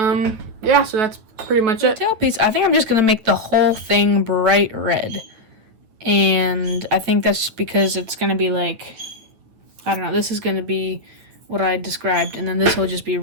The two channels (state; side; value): late; left; 9.4 ms